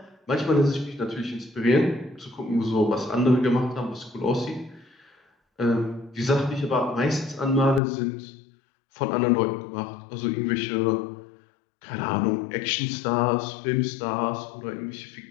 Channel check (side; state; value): right; drops out; at 7.8 s